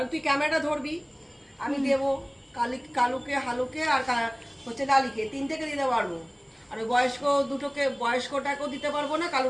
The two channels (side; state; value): both; identical; correlation 1.00